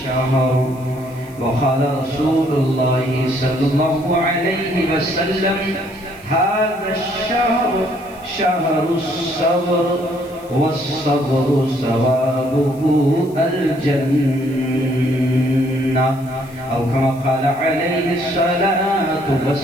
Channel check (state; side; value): noise; left; hiss, 25 dB below the sound